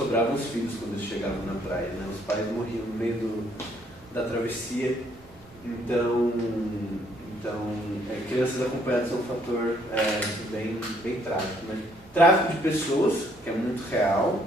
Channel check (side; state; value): both; normal; correlation 0.67